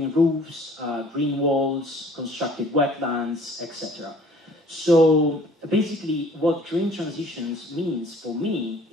roofs, green walls, constructed wetlands, etc. So basically what green transitions means for me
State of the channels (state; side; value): normal; both; correlation 0.54